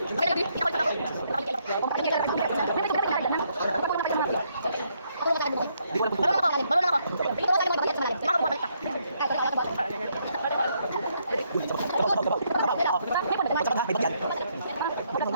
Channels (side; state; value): both; inverted; correlation -0.74